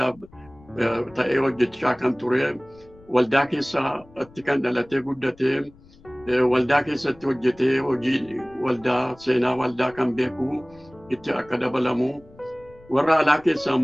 ta'ee hojjechaa kan ture waldaa keessatti kan dhalatee guddatee waldaa keessatti hojjetee hojii waldaa seenaa waldaa kan beeku itti akka dabalamu warra alaa keessaa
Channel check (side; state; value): left; noise; rumble, 25 dB below the sound